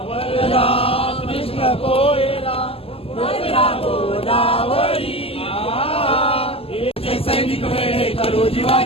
कृष्ण कोयना भद्रा गोदावरी. सैनिक वेळे करू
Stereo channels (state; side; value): late; right; 0.28 ms